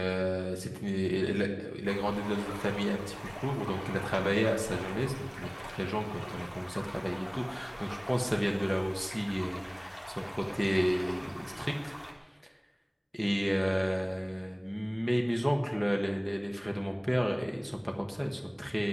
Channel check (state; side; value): identical; both; correlation 1.00